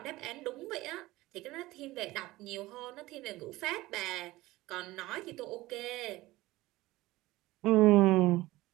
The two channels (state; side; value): quieter; left; 18.5 dB